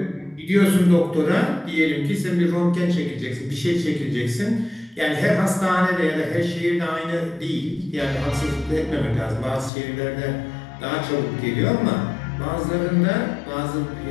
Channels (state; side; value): drops out; right; at 9.7 s